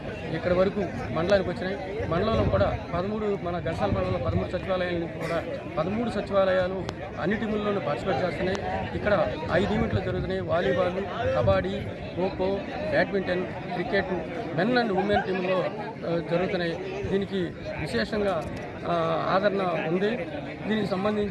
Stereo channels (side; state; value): both; identical; correlation 1.00